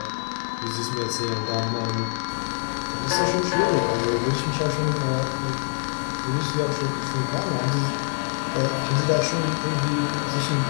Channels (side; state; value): right; silent; 61 dB below the other